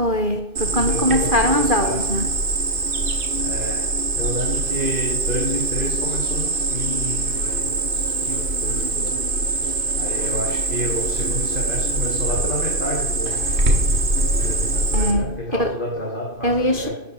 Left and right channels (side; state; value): left; late; 2.5 ms